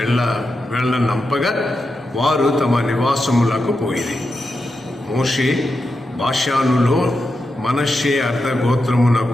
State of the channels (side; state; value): both; normal; correlation 0.88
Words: వెళ్ళనంపగా వారు తమ నివాసములకు పోయిరి. మోషే బాషానులో మనష్షే